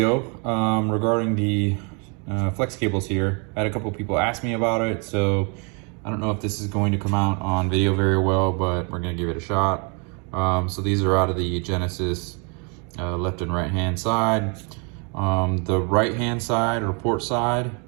regarding the flex cables here. I had a couple people ask me about it, so I don't know if this is going to come out on video very well, but we're going to give it a shot. So these are out of the Genesis left and right hand side. The right hand side or port side,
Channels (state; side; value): quieter; left; 35.1 dB